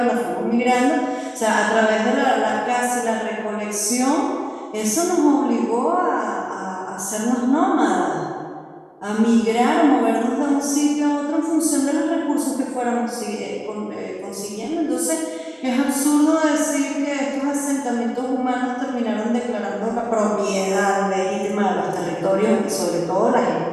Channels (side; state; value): both; identical; correlation 1.00